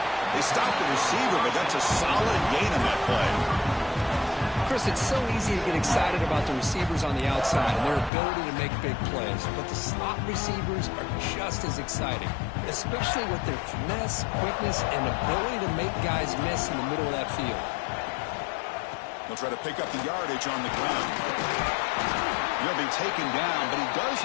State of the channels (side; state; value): right; drops out; at 8.1 s